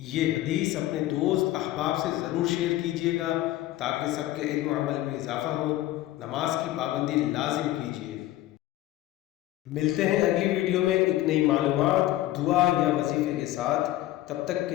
حدیث اپنے دوست احباب سے ضرور شیئر کیجیے گا تاکہ سب کے علم و عمل میں اضافہ ہو۔ نماز کی پابندی لازم کیجیے۔ ملتے ہیں اگلی ویڈیو میں ایک نئی معلومات، دعا یا وظیفے کے ساتھ۔ تب تک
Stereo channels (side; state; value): right; quieter; 15.3 dB